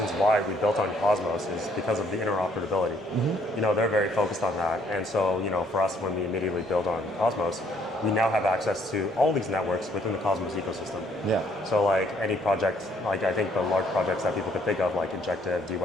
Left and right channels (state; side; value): normal; both; correlation 0.65